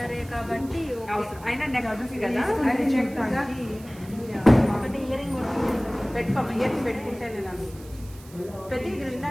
కాబట్టి అయినా నెక్స్ట్ కదా ఒకటి ఇయరింగ్ పెట్టుకోమా. ఇయర్స్ పెట్టుకుంటే నేను ప్రతి ఇది విన్నా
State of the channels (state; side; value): noise; right; hiss, 22 dB below the sound